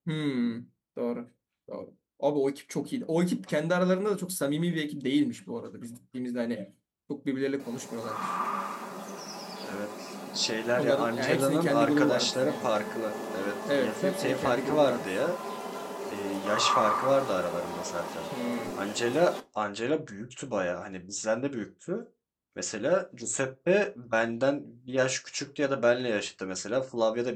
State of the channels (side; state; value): both; identical; correlation 1.00